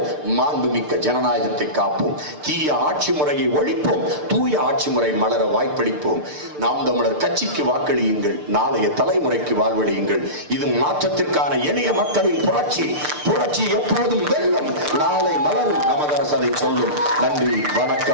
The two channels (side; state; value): left; late; 6.7 ms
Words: மாண்புமிக்க ஜனநாயகத்தை காப்போம். தீய ஆட்சி முறையை ஒழிப்போம், தூய ஆட்சி முறை மலர வாய்ப்பளிப்போம். நாம் தமிழர் கட்சிக்கு வாக்களியுங்கள், நாளைய தலைமுறைக்கு வாழ்வழியுங்கள். இது மாற்றத்திற்கான எளிய மக்களின் புரட்சி. புரட்சி எப்போதும் வெல்லும், நாளை மலரும். நமது அரசு அதை சொல்லும். நன்றி,